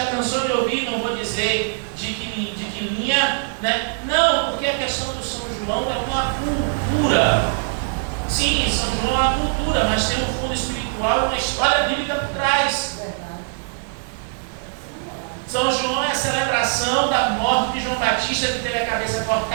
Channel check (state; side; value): silent; left; 64 dB below the other